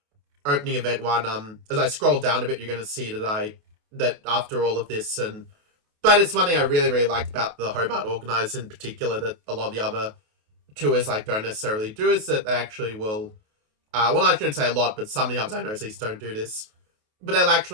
opening event one, as I scroll down a bit, you're going to see that after all of this, but it's one thing I really, really like about the Hobart organizers in particular that a lot of the other tours like don't necessarily do, is that they actually will, well, I shouldn't say a lot, but some of the others I know at least don't do this, but they'll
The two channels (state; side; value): late; left; 28 ms